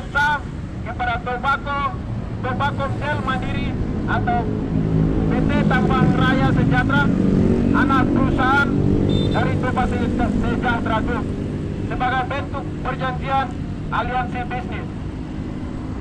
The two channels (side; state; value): both; identical; correlation 1.00